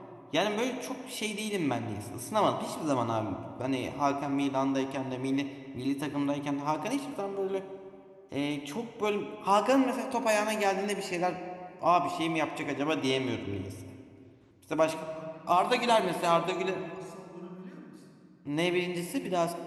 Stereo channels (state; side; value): identical; both; correlation 1.00